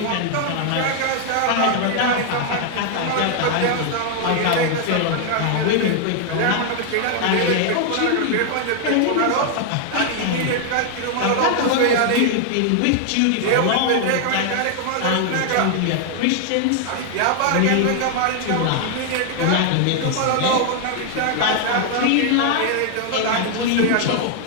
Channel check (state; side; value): different; both; correlation 0.00